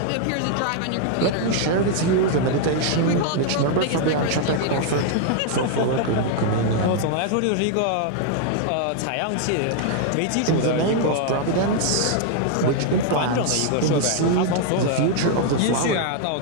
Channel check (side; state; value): both; different; correlation 0.00